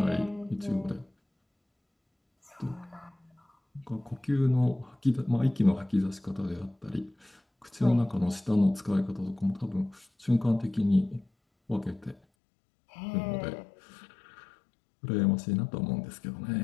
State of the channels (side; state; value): right; drops out; at 12.2 s